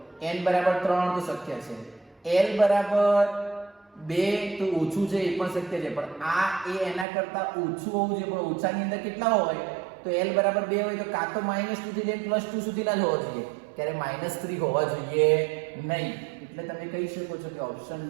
n બરાબર 3 તો શક્ય છે, l બરાબર 2 તો ઓછું છે એ પણ શક્ય છે, પણ આ એ એના કરતા ઓછું હોવું જોઈએ. પણ ઓછાની અંદર કેટલા હોય? તો l બરાબર 2 હોય તો કાં તો -2 થી લઈને +2 સુધીના જ હોવા જોઈએ, ત્યારે -3 હોવા જોઈએ નહીં. એટલે તમે કહી શકો છો કે ઓપ્શન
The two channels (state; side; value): drops out; left; at 7.1 s